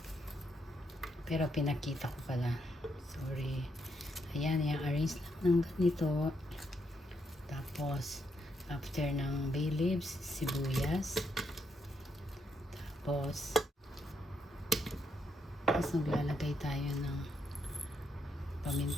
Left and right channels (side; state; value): both; normal; correlation 0.77